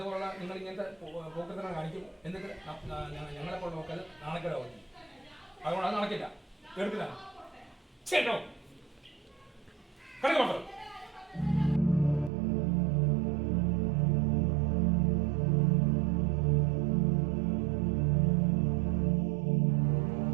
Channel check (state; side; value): drops out; left; at 12.3 s